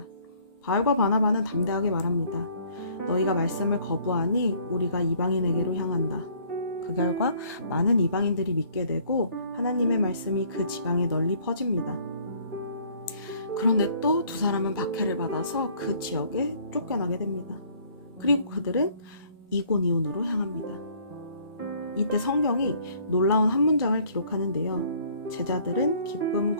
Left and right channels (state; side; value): inverted; both; correlation -0.59